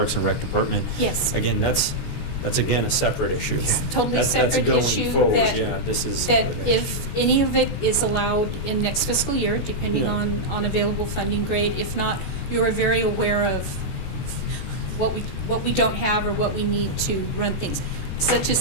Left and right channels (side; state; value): right; late; 14 ms